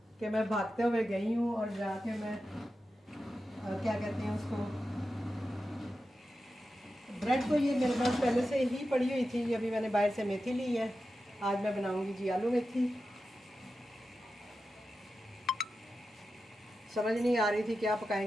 कि मैं भागते हुए गई हूँ और जाके मैं क्या कहते हैं उसको, ब्रेड तो ये मेरे पास पहले से ही पड़ी हुई थी। अभी मैंने बाहर से मेथी ली है, आज मैं बनाऊंगी जी आलू मेथी। समझ नहीं आ रही थी क्या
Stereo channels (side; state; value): both; normal; correlation 0.91